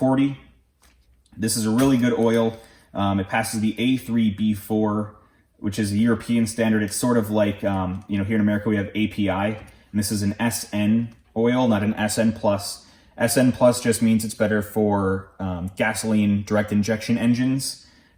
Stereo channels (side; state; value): both; identical; correlation 1.00